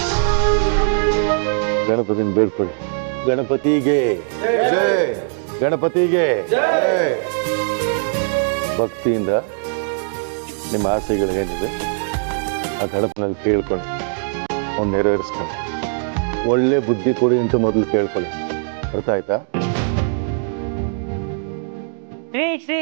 ಗಣಪತಿನ ಬೇಡ್ಕೊಳ್ಳಿ. ಗಣಪತಿಗೆ ಗಣಪತಿಗೆ ಭಕ್ತಿಯಿಂದ ನಿಮ್ಮ ಆಸೆಗಳೇನಿದೆ ಆ ಗಣಪನಲ್ಲಿ ಕೇಳ್ಕೊಂಡು ಅವ್ನು ನೆರವೇರಿಸ್ಕೊಂಡು ಒಳ್ಳೆ ಬುದ್ಧಿ ಕೊಡಿ ಅಂತ ಮೊದಲು ಕೇಳ್ಕೊಳ್ಳಿ. ಅರ್ಥ ಆಯ್ತಾ? ಶ್ರೀ ಶ್ರೀ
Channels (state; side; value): silent; left; 63 dB below the other